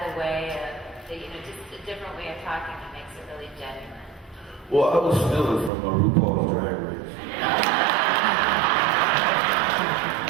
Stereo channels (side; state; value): left; drops out; at 5.7 s